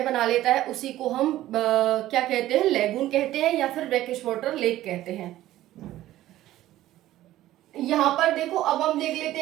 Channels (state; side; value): quieter; left; 14.5 dB